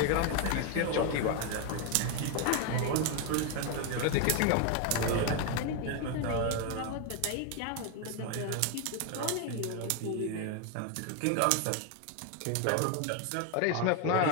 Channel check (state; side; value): different; both; correlation 0.01